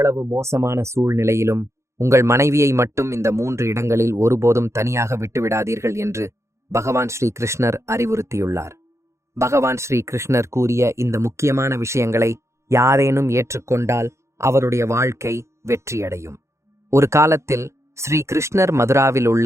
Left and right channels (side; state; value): left; late; 0.14 ms